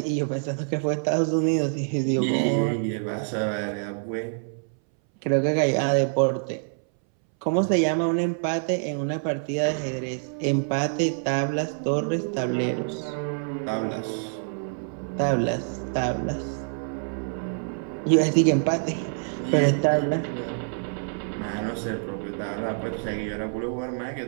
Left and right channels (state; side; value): silent; left; 61 dB below the other